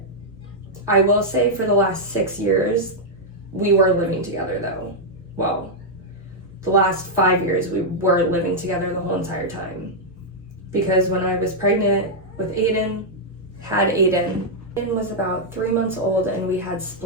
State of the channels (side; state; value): both; normal; correlation -0.04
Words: I will say for the last 6 years, we were living together though. Well, the last 5 years, we were living together the whole entire time. Because when I was pregnant with Aiden, Aiden was about 3 months old and we had